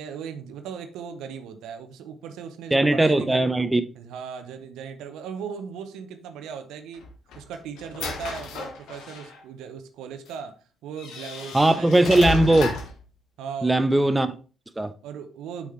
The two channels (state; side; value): normal; both; correlation 0.92